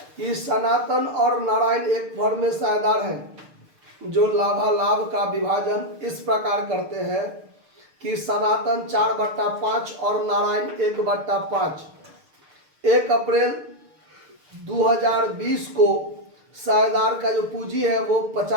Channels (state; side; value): late; left; 6.7 ms